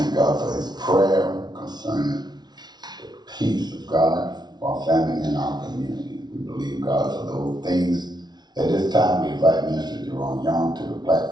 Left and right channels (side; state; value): left; late; 0.20 ms